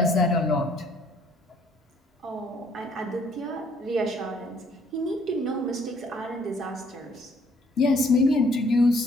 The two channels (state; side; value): normal; both; correlation 0.63